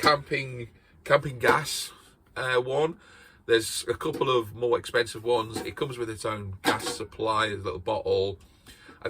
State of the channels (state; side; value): identical; both; correlation 1.00